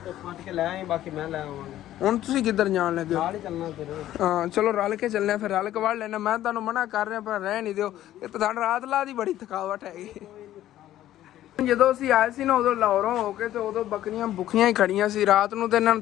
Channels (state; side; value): quieter; right; 13.2 dB